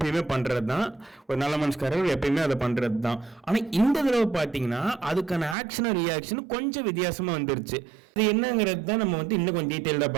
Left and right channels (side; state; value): left; drops out; at 5.6 s